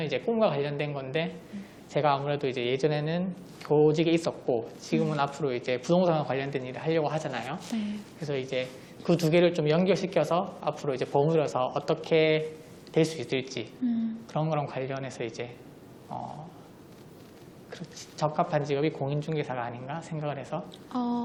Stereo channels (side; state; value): both; identical; correlation 1.00